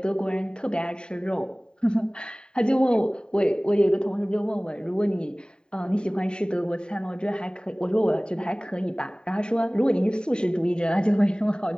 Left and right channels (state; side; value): late; right; 0.048 ms